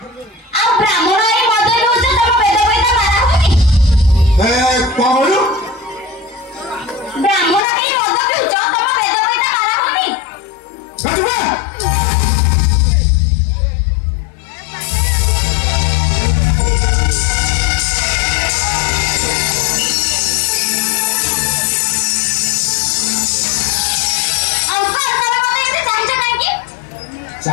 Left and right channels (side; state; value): right; drops out; at 7.7 s